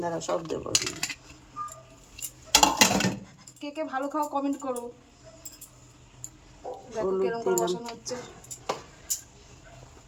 দাঁড়া সব দেবো। কে কে ভালো খাও কমেন্ট করো। দেখো কেরকম করে বসানো হচ্ছে।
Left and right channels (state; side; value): identical; both; correlation 1.00